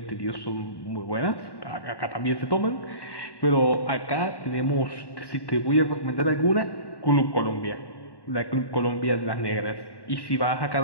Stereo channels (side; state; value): right; late; 1.1 ms